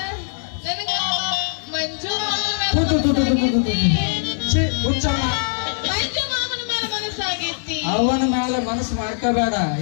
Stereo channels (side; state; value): right; silent; digital silence